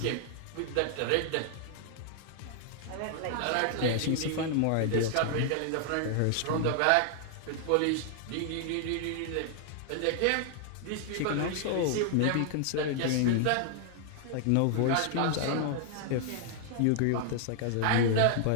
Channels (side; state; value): both; different; correlation 0.00